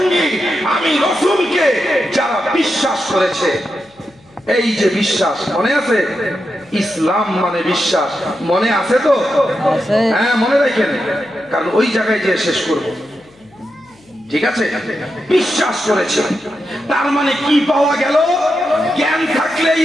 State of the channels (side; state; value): left; noise; hum, 30 dB below the sound